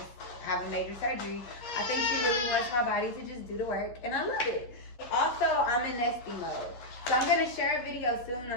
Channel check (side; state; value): right; late; 12 ms